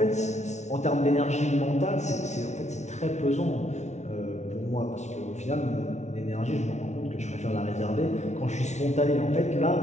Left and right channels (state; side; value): late; right; 0.34 ms